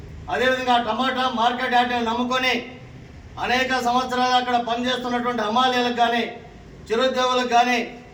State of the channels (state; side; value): identical; both; correlation 1.00